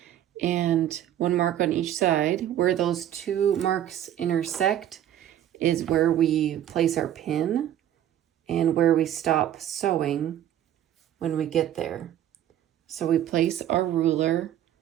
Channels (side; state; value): left; quieter; 11.4 dB